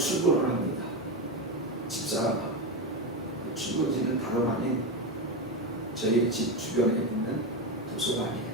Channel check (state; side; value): normal; both; correlation 0.14